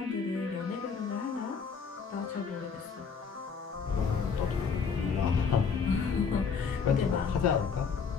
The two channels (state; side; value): quieter; right; 5.8 dB